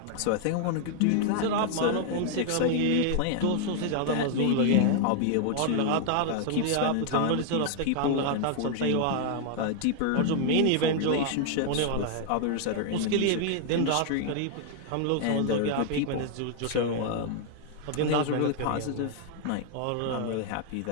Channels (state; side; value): different; both; correlation 0.00